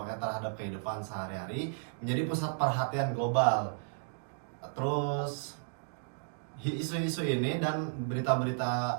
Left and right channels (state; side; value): silent; left; digital silence